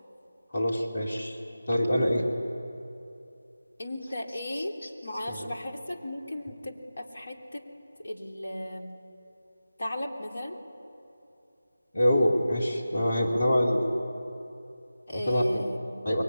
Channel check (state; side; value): inverted; both; correlation -0.93